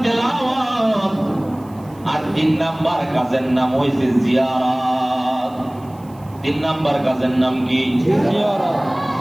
তেলাওয়াত, আর 3 নাম্বার কাজের নাম হইছে জিয়ারত। 3 নাম্বার কাজের নাম কি? জিয়ারত।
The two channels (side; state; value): right; noise; hiss, 29 dB below the sound